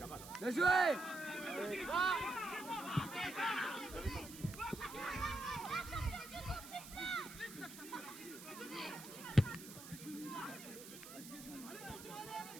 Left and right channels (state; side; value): noise; right; hiss, 14 dB below the sound